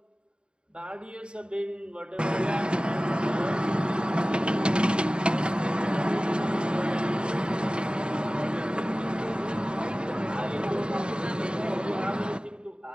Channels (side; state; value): left; late; 0.051 ms